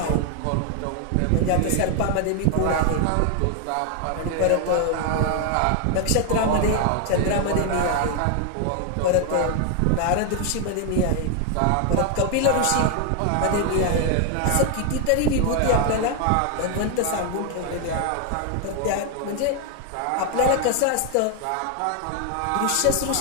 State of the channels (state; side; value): different; both; correlation 0.00